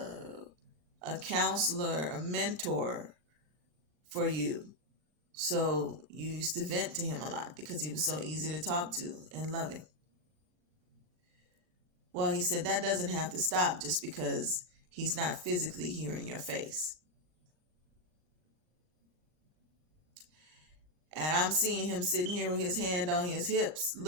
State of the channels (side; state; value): left; late; 40 ms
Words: counselor, a mentor for you. So you used to vent to him a lot because he was so easy to talk to and loving. Well, he said that doesn't have to stop just because he's not physically hearing your face. And I'm seeing him sitting here with his hand on his hips,